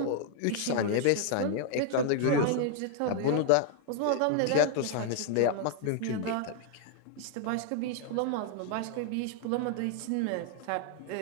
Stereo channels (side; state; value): both; different; correlation 0.00